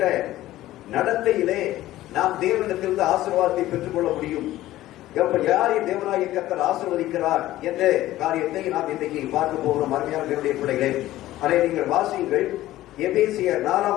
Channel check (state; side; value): quieter; right; 15.2 dB